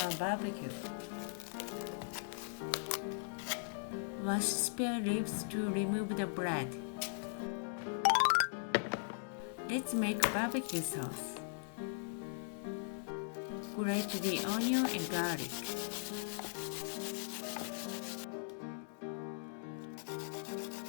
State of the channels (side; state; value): right; silent; digital silence